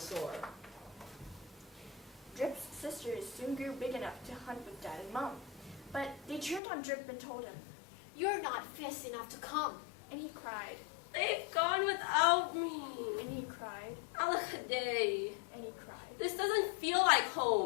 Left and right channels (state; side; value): drops out; right; at 6.6 s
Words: Drip's sisters soon grew big enough to hunt with Dad and Mom, but they turned on Drip and told him, You're not fast enough to come. and he cried, They've gone without me! and he cried, Alakaday! and he cried. This doesn't feel like